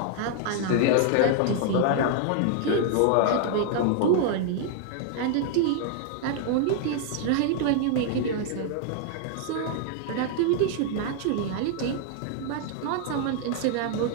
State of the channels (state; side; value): different; both; correlation 0.00